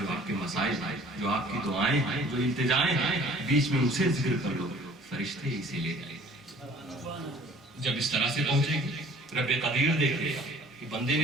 آپ کے مسائل ہیں، جو آپ کی دعائیں ہیں، جو التجائیں ہیں، بیچ میں اسے ذکر کر لو، فرشتے اسے لے جائیں. جب اس طرح سے پہنچے گے، رب قدیر دیکھے گا کہ بندے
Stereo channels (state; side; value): normal; both; correlation 0.51